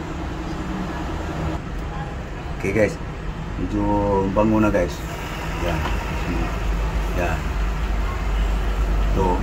Okay guys, medyo bango na guys. Yan. Yan. Ito.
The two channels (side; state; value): both; identical; correlation 1.00